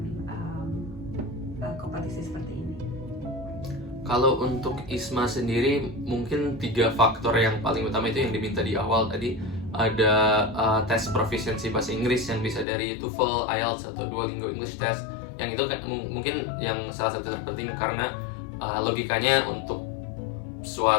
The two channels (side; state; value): right; drops out; at 12.7 s